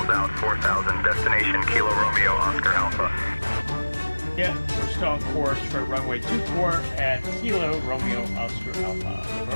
out, 4,000. Destination Kilo Romeo Oscar Alpha. Yeah, we're still on course for runway 24 at Kilo Romeo Oscar Alpha.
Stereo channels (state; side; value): inverted; both; correlation -1.00